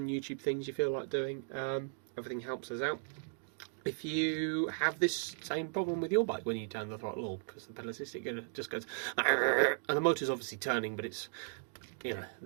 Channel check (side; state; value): left; silent; digital silence